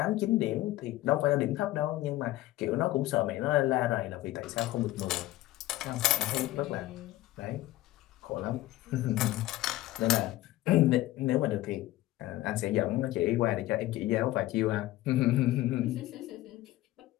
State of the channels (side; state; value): right; quieter; 16.3 dB